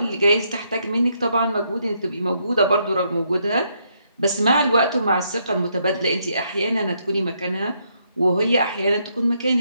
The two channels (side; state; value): both; inverted; correlation -0.75